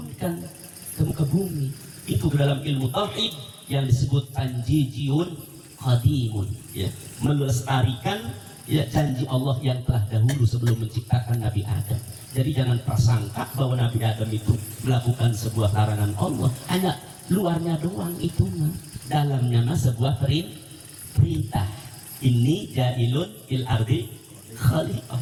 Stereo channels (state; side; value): identical; both; correlation 1.00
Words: ke muka bumi. Itu dalam ilmu tauhid yang disebut tanjijiyun qadimun, ya, melestarikan ya janji Allah yang telah dahulu sebelum menciptakan Nabi Adam. Jadi jangan prasangka bahwa Nabi Adam itu melakukan sebuah larangan Allah, hanya luarnya doang itu mah, dalamnya mah sebuah perintah. Ini ja'ilun fil ardi khalifah,